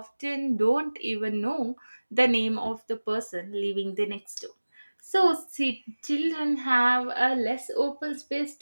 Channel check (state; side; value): inverted; both; correlation -1.00